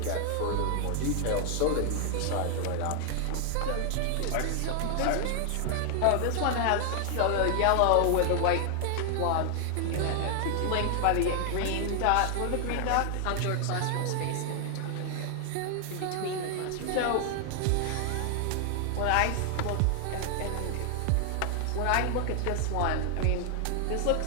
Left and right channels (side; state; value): both; different; correlation 0.00